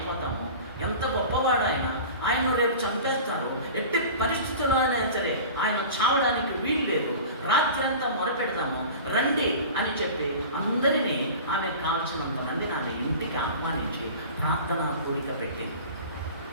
ఎంత గొప్పవాడైనా ఆయన రేపు చంపేస్తారు. ఎట్టి పరిస్థితుల్లో అయినా సరే ఆయన చావడానికి వీలు లేదు. రాత్రి అంతా మొరపెడదాము రండి అని చెప్పి అందరినీ ఆమె కాల్చినంత మందిని ఆమె ఇంటికి ఆహ్వానించి ప్రార్థన కూడిక పెట్టింది.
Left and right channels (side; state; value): both; inverted; correlation -0.37